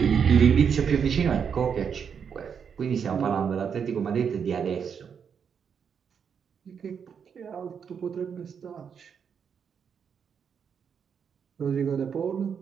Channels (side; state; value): left; quieter; 7.0 dB